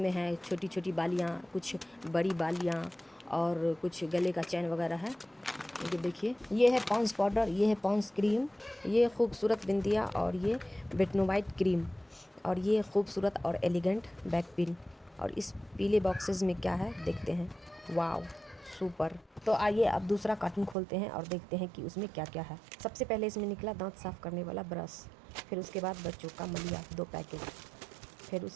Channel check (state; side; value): drops out; left; at 20.8 s